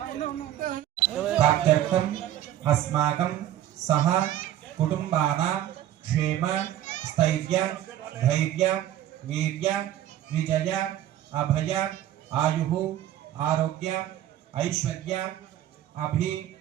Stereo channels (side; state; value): left; quieter; 12.3 dB